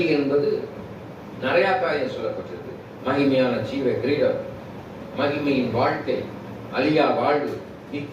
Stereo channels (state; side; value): identical; both; correlation 1.00